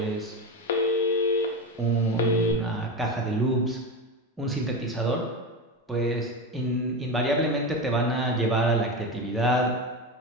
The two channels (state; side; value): normal; both; correlation 0.19